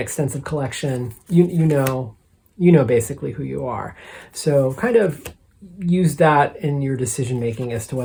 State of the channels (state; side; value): identical; both; correlation 1.00